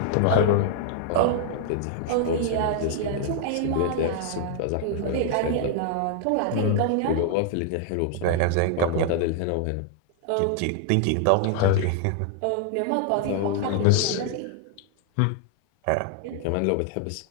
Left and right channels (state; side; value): different; both; correlation 0.00